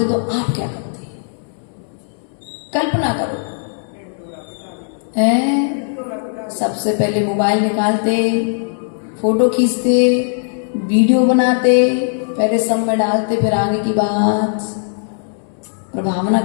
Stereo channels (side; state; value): right; silent; 67 dB below the other